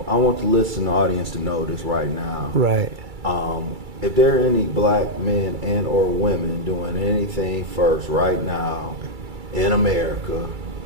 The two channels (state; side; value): late; left; 2.3 ms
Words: want the listening audience to know this right now. Right. If there are any black men and or women doing anything first right now in America,